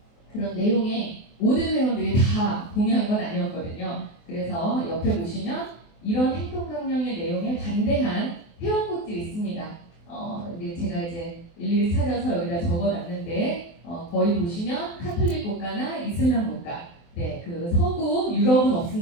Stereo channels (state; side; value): late; right; 24 ms